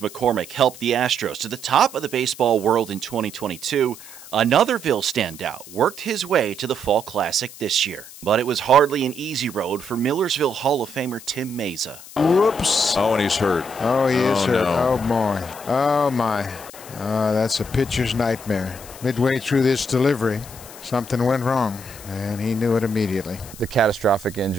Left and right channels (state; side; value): noise; left; hiss, 17 dB below the sound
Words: helped the Astros to the top of the baseball world in 2022, another Ville standout worked his way to the Fall Classic this year. But it was hardly an easy road for Millersville Hall of Famer Tim Mayza. Whoops. Oh, and he's hurt. Oh, he is hurt. No. Oh, boy. Oh, my. That's a pitcher's nightmare. Midway through this delivery, something went wrong, and he knew it immediately. The catastrophic